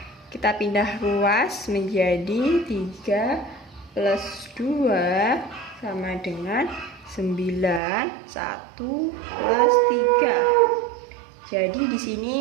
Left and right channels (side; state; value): left; drops out; at 7.8 s